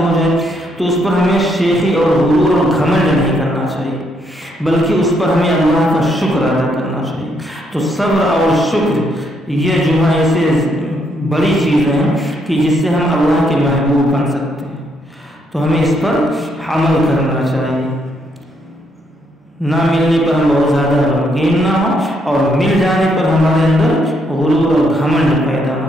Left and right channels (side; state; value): both; normal; correlation 0.74